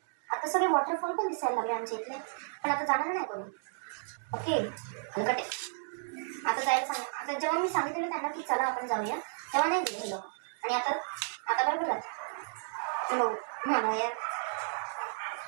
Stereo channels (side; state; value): left; silent; digital silence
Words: आता सगळे वॉटरफॉल पण दिसायला लागले आमच्या इथले. पण आता जाणार नाही कोणी. ओके हलकटे. आता जायला सांग. आता जेव्हा मी सांगितलेलं त्यांना की चला आपण जाऊया तेव्हा नाही गेले हे लोक. आणि आता बरोबर जात हो म्हणा यार.